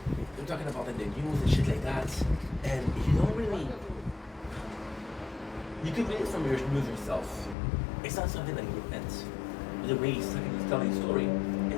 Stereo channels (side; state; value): right; drops out; at 7.6 s